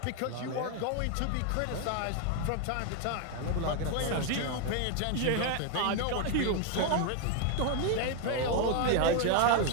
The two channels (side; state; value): both; different; correlation 0.01